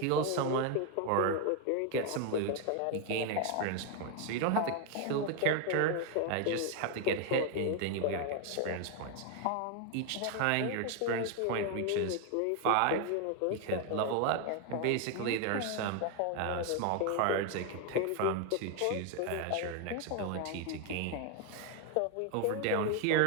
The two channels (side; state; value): both; different; correlation 0.01